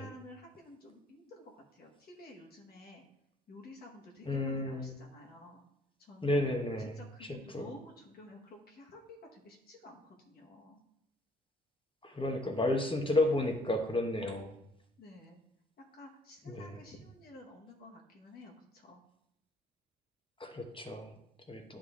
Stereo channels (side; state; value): both; normal; correlation 0.62